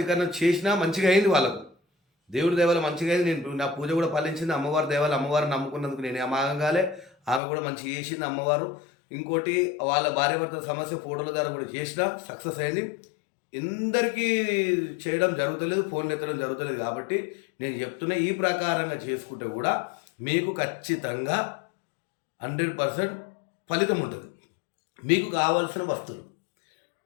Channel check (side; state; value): right; drops out; at 7.4 s